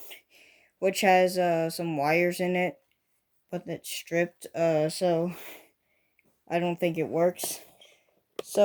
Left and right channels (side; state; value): both; identical; correlation 1.00